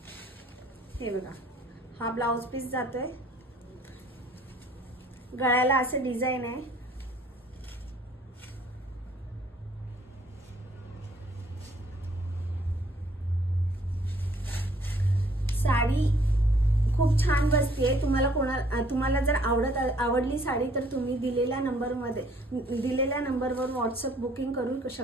हे बघा, हा ब्लाउज पीस जातोय, गळ्याला असे डिझाइन आहे। साडी खूप छान बसते। तुम्हाला जर आवडली साडी तर तुम्ही दिलेल्या नंबरवर व्हॉट्सअप बुकिंग करू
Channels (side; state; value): both; normal; correlation 0.61